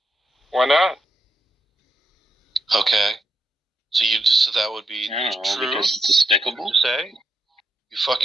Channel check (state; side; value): normal; both; correlation 0.83